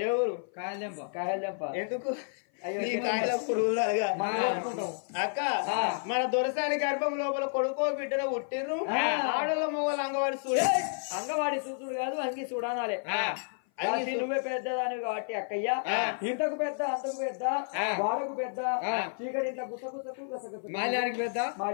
ఏ ఊరు కాయలెంప ఎందుకు నీ కాయల పురుగులుగా అక్క మన దొరసాని గర్భం లోపల కొడుకో బిడ్డను పుట్టిర్రు ఆడల మొగలు అంగవాడి చూడ అంగవాడి చూసుడు కాదు అంగి చూడాలి నువ్వే పెద్దదాని కాబట్టి అక్కయ్య ఇంతకు పెద్ద అంతకు పెద్ద వాడకు పెద్ద చీకటి ఇంట్లో గుసగుసకు మాల్యానికి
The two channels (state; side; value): silent; right; 56 dB below the other